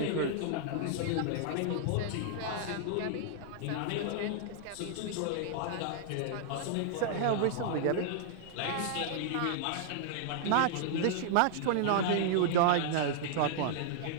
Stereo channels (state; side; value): different; both; correlation -0.01